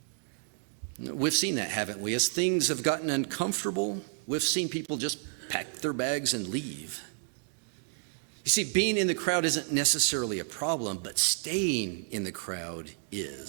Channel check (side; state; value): left; silent; 57 dB below the other